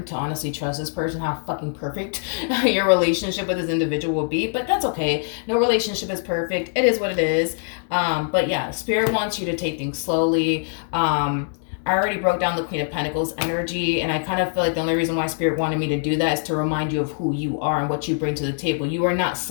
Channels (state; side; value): silent; right; digital silence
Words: to honestly trust this person, how fucking perfect your relationship with this individual will be. But that's okay. No relationship is perfect. It is what it is. But yeah, Spirit wants you to take things slowly. I already broke down the Queen of Pentacles energy, and I kind of feel like the only reason why Spirit wanted me to do that is to remind you of who you are and what you bring to the table. You are not